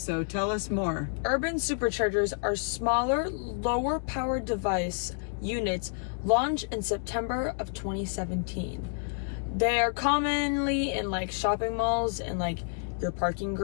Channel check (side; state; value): right; silent; 58 dB below the other